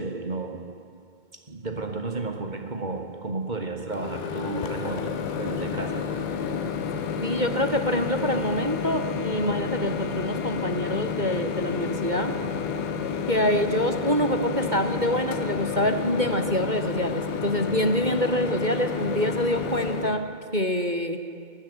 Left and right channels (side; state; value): left; late; 2.2 ms